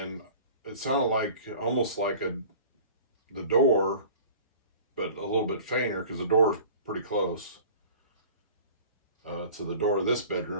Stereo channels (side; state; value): both; inverted; correlation -0.43